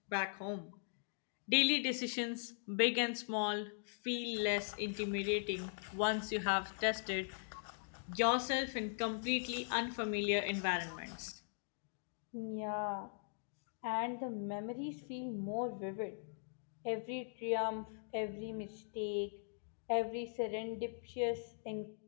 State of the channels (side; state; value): right; silent; digital silence